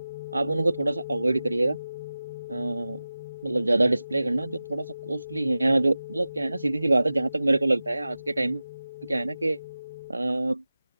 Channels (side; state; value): both; inverted; correlation -0.96